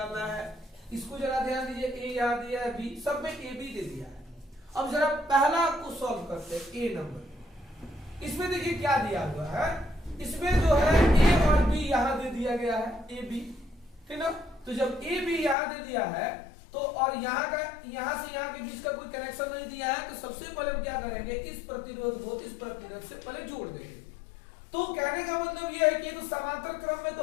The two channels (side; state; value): right; drops out; at 15.6 s